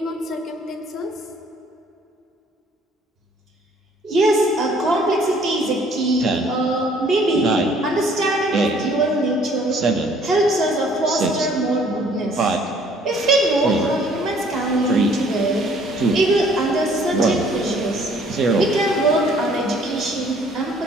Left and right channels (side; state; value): both; normal; correlation 0.59